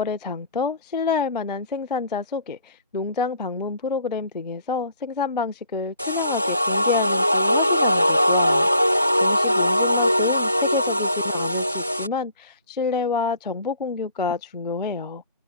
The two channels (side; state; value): both; inverted; correlation -0.59